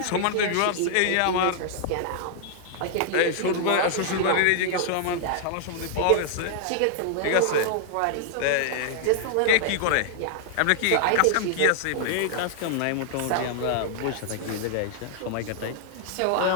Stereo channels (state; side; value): different; both; correlation -0.01